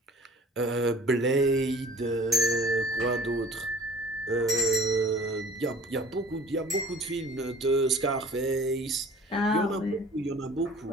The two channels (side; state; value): both; normal; correlation 0.47